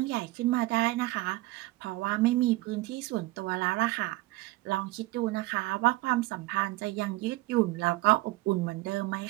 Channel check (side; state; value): left; quieter; 19.5 dB